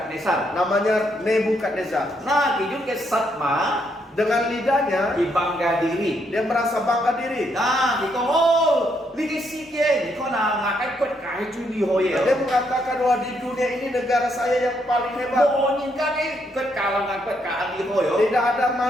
namanya Nebukadnezar. Nah, kijun ke sat ma Dengan lidahnya di bangga diri. dia merasa bangga diri. Nah, di kong oh, lagi sikit, kau nak ngakai kuat kai juli hoye. Dia mengatakan bahwa di dunia ini negara saya yang paling hebat. Mau nyingkai kuat kalangan kuat kaan di hoye. Tidak ada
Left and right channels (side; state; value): both; normal; correlation 0.75